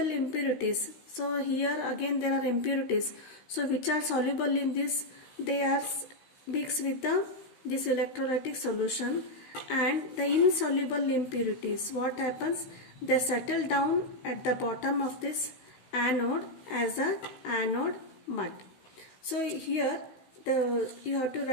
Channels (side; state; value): right; late; 16 ms